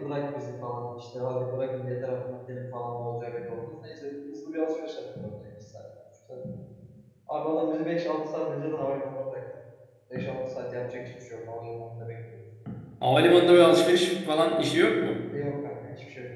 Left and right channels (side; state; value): both; identical; correlation 1.00